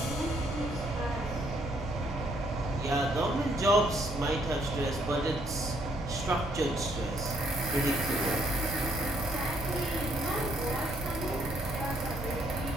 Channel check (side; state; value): both; normal; correlation 0.69